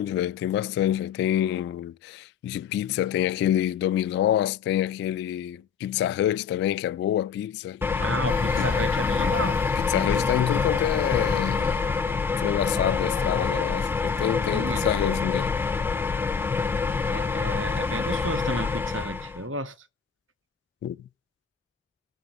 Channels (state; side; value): quieter; right; 6.3 dB